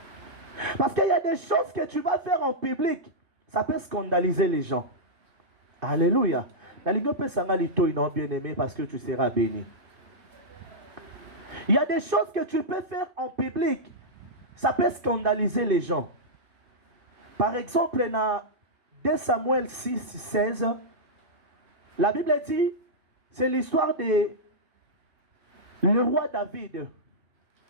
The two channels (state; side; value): late; left; 2.7 ms